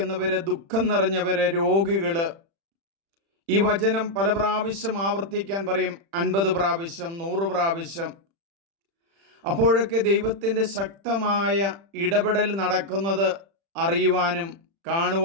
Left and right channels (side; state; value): left; late; 36 ms